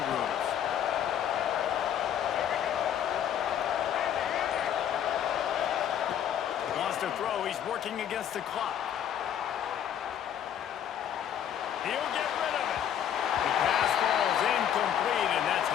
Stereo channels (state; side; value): quieter; right; 9.7 dB